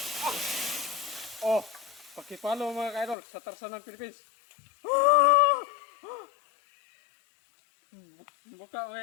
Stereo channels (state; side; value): drops out; right; at 3.2 s